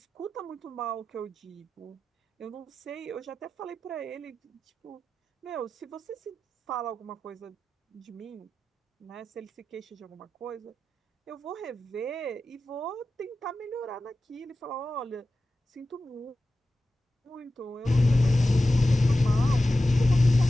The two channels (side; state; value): both; normal; correlation 0.93